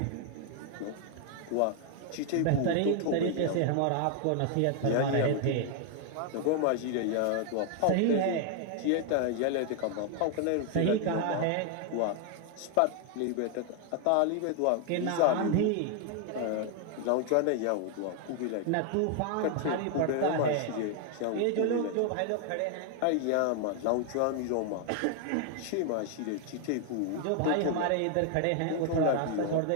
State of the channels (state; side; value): different; both; correlation 0.00